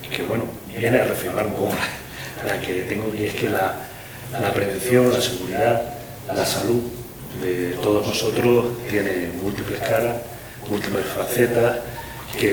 bueno, viene a reafirmar un poco la que tengo aquí es que la prevención, la seguridad, la salud de todos nosotros tiene múltiples caras, múltiples facetas,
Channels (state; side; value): identical; both; correlation 1.00